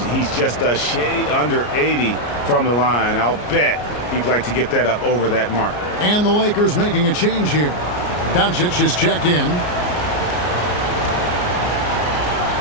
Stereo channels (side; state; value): right; late; 34 ms